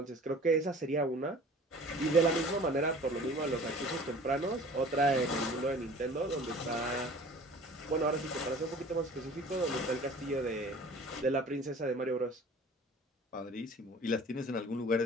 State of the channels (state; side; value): normal; both; correlation 0.45